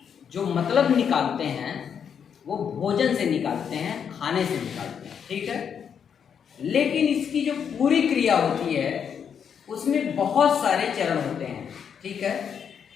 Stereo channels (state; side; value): quieter; right; 7.6 dB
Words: जो मतलब निकालते हैं वो भोजन से निकालते हैं, खाने से निकालते हैं, ठीक है। लेकिन इसकी जो पूरी क्रिया होती है उसमें बहुत सारे चरण होते हैं, ठीक है।